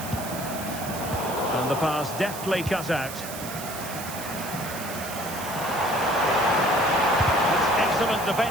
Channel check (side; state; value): right; noise; hiss, 10 dB below the sound